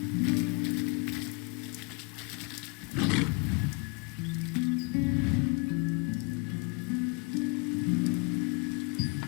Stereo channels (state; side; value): quieter; right; 30.7 dB